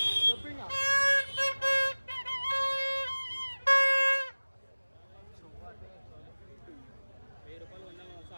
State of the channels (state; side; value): inverted; both; correlation -1.00